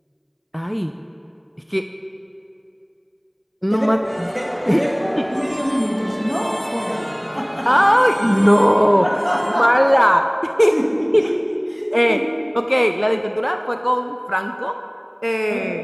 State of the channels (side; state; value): both; identical; correlation 1.00